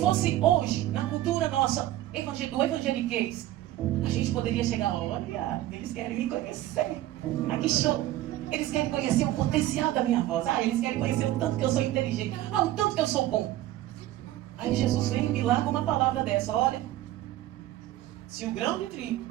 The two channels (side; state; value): left; quieter; 14.5 dB